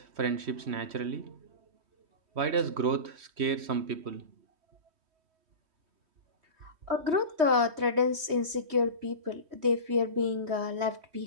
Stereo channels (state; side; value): late; left; 3.1 ms